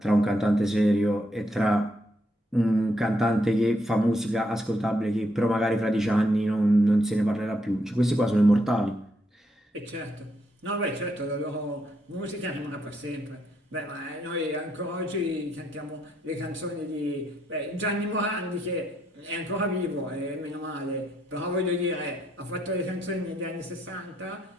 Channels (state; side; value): normal; both; correlation 0.76